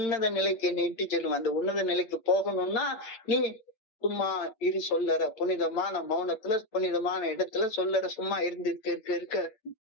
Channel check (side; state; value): right; late; 8.9 ms